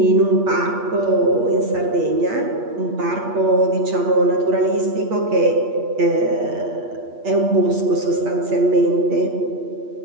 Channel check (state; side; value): late; left; 8.5 ms